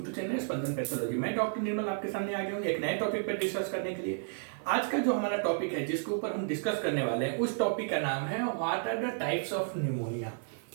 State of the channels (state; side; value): silent; left; 56 dB below the other